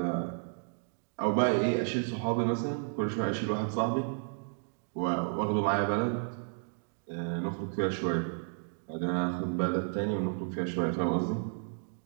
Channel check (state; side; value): silent; left; 56 dB below the other